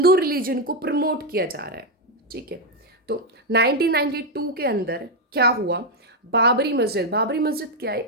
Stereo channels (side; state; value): both; normal; correlation 0.03